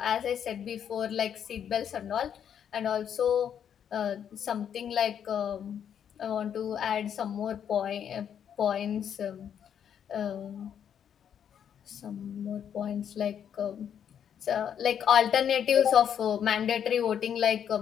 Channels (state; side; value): quieter; right; 8.7 dB